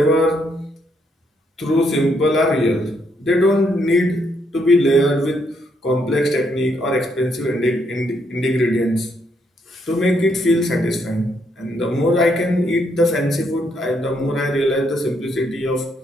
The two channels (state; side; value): normal; both; correlation 0.74